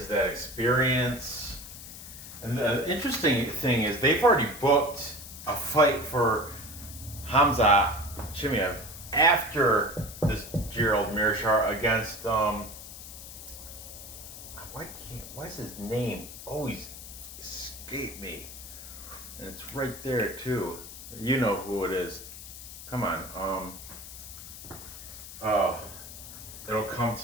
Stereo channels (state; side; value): noise; left; hiss, 13 dB below the sound